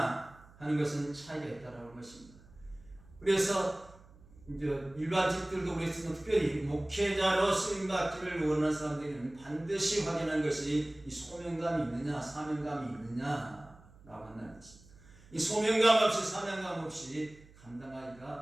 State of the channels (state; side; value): noise; right; hum, 24 dB below the sound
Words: 하는 것은 차이가 있다라는 것입니다. 그래서 이제 일반직들도 그랬지만 특별히 목회자로 쓰임받기를 원하는 사람들은 반드시 확인하는 것이 이 소명감이 있느냐, 사명감이 있느냐라고 한다는 것입니다. 이 소명감 없이 사명감 없이